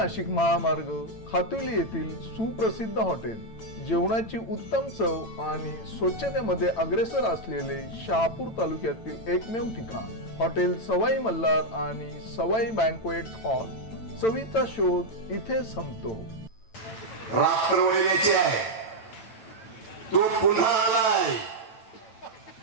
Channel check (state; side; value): late; right; 8.9 ms